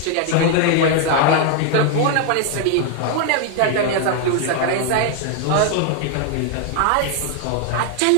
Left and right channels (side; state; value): both; different; correlation 0.00